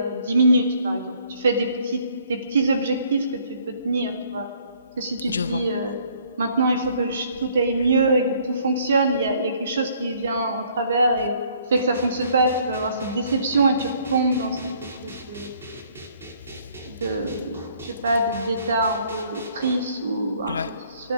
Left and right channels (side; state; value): both; inverted; correlation -0.62